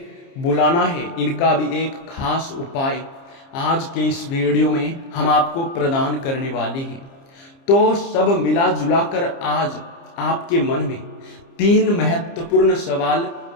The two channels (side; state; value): right; late; 30 ms